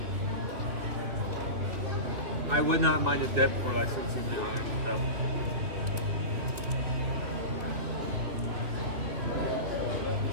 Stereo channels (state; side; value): late; left; 3.0 ms